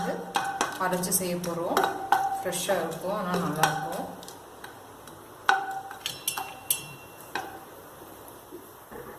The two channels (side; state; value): both; identical; correlation 1.00